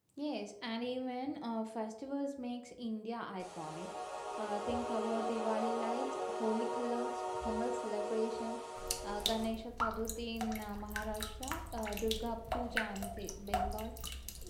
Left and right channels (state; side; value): identical; both; correlation 1.00